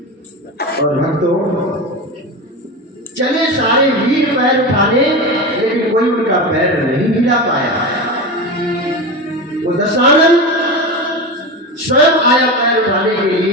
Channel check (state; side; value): normal; both; correlation 0.23